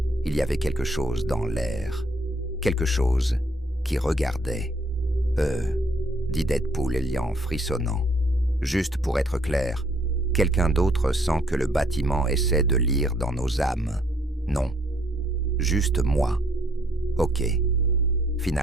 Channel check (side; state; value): both; normal; correlation 0.66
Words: Il y avait quelque chose dans l'air, quelque chose qui regardait. Dit Deadpool Elian frissonnant. Juste pour être clair, quelqu'un d'autre sent que le bâtiment essaie de lire dans nos âmes. Non, juste moi. Ok.